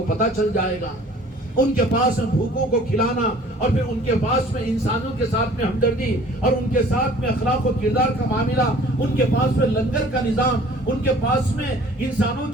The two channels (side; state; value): both; normal; correlation 0.51